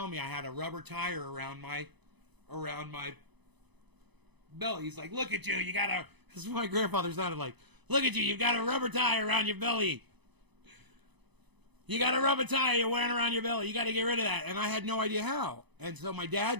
me I had a rubber tire around my belly. He's like, look at you, you got a... This is what my grandfather sounded like. Look at you, you've got a rubber tire around your belly. You got a rubber tire you're wearing around your belly. You got to get rid of that. And I had no idea how. And so my dad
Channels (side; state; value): left; late; 0.99 ms